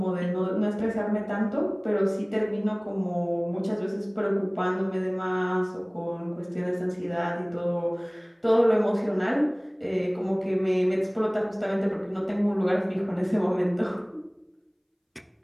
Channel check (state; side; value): identical; both; correlation 1.00